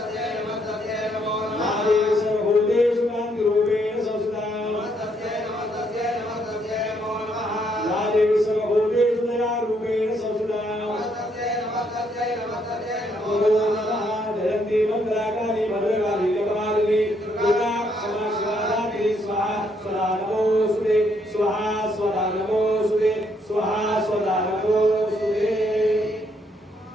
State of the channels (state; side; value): normal; both; correlation 0.72